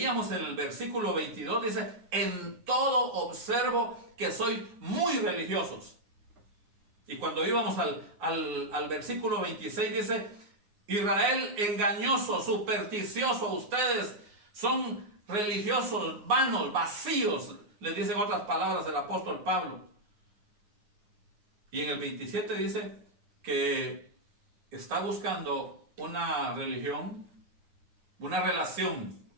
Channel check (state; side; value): late; left; 9.6 ms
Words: en el versículo 22 dice: en todo observo que sois muy religiosos. Y cuando íbamos al versículo 26 dice: Israel engañoso, supersticioso, ustedes son religiosos, vanos, vacíos, les dicen otras palabras el apóstol Pablo. Y en el 27 dice que está buscando una religión, una relación,